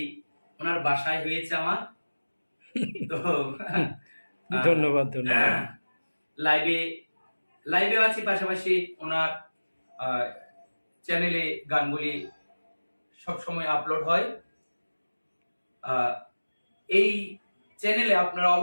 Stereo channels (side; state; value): both; inverted; correlation -1.00